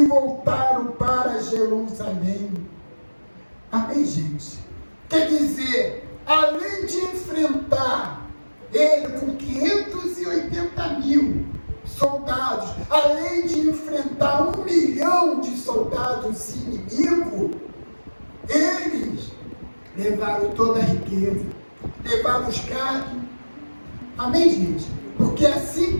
voltaram para Jerusalém. Amém, gente? Quer dizer, além de enfrentar ele com 580 mil soldados, além de enfrentar 1 milhão de soldados inimigos, eles levaram toda a riqueza, levaram os gados. Amém, gente? Porque assim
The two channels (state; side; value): inverted; both; correlation -1.00